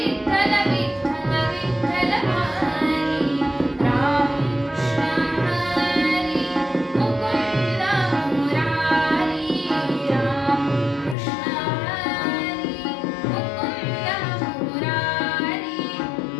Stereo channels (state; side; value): drops out; right; at 11.2 s